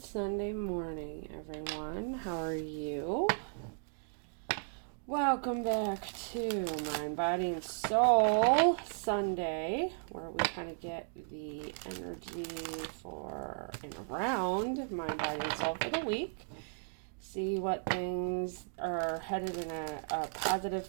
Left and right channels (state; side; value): silent; left; digital silence